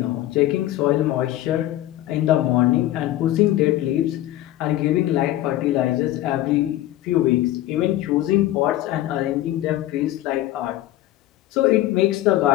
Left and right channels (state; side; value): quieter; right; 14.6 dB